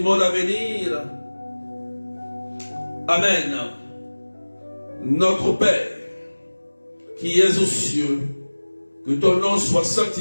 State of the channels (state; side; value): inverted; both; correlation -1.00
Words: à venir. Amen. Notre Père, qui es aux cieux, que ton nom soit